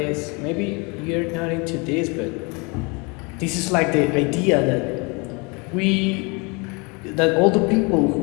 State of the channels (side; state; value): right; quieter; 29.8 dB